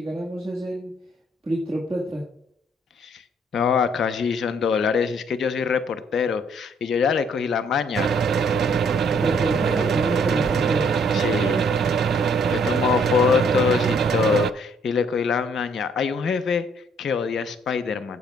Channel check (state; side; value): normal; both; correlation 0.65